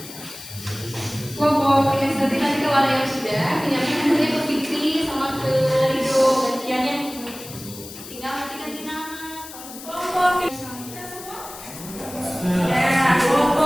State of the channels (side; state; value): left; noise; hiss, 14 dB below the sound